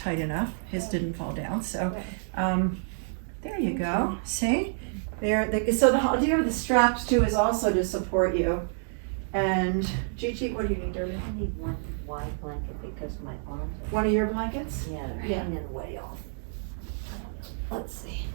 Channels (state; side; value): silent; left; 59 dB below the other